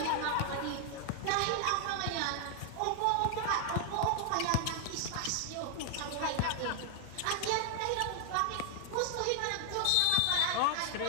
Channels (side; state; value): both; different; correlation 0.00